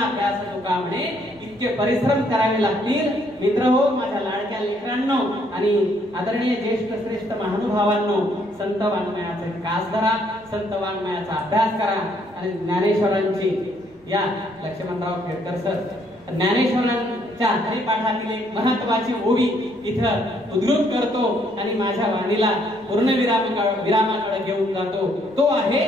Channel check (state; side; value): noise; right; rumble, 29 dB below the sound